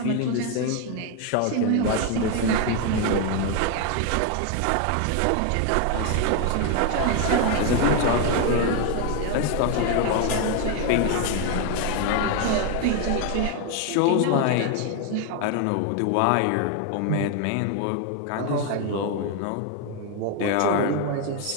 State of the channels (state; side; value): different; both; correlation 0.01